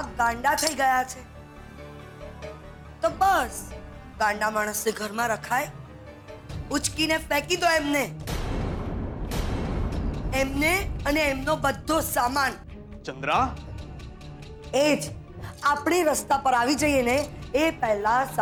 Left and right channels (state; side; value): identical; both; correlation 1.00